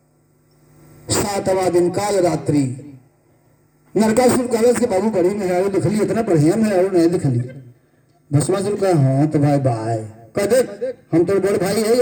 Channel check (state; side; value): identical; both; correlation 1.00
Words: 7वां दिन काल रात्रि। नरकासुर कलश के बाबू बड़ी मेहरारू दिखली, इतना बढ़िया मेहरारू नहीं दिखली। भस्मासुर कहा हाँ तो भाई बाय कह देख हम तो बड़ भाई